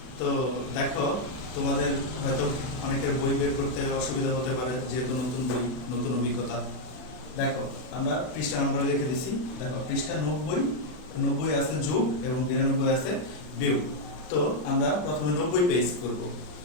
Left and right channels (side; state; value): right; late; 40 ms